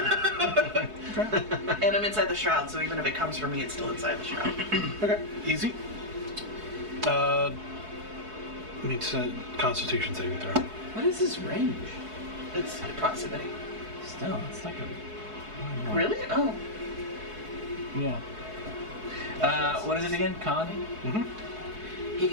And I'm inside the shroud, so even if it comes for me, it's still inside the shroud. Okay. Easy. Needs a Constitution saving throw. What is his range? It's proximity. Still, it's like a... Really? Oh. Yeah. What is it again? Con? Mm-hmm. He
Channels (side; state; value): left; late; 4.7 ms